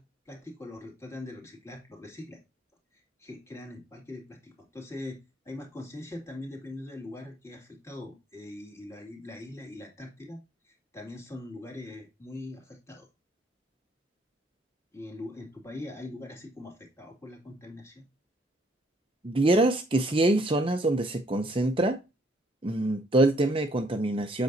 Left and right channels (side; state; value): both; normal; correlation 0.66